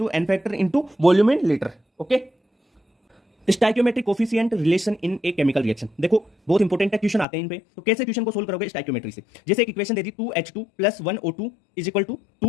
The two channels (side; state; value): right; drops out; at 7.2 s